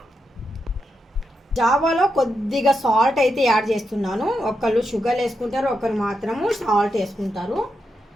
జావాలో కొద్దిగా సాల్ట్ అయితే యాడ్ చేస్తున్నాను. ఒకళ్ళు షుగర్ వేసుకుంటారు, ఒకరు మాత్రము సాల్ట్ వేసుకుంటారు.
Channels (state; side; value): normal; both; correlation 0.84